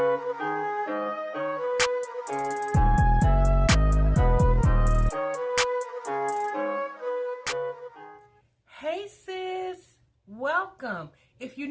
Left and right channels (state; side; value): identical; both; correlation 1.00